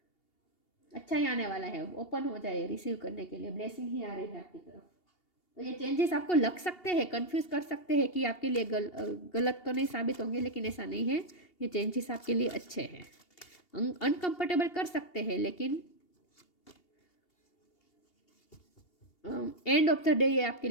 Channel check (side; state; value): right; late; 2.8 ms